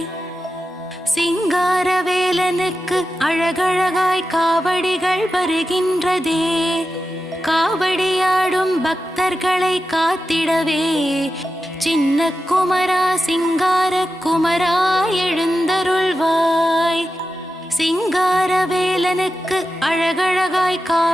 சிங்காரவேலனுக்கு அழகழகாய் காவடிகள் வருகின்றதே, காவடியாடும் பக்தர்களை காத்திடவே சின்ன குமரா சிங்கார குமரா எழுந்தருள்வாய். சிங்காரவேலனுக்கு அழகழகாய்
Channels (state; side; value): normal; both; correlation 0.91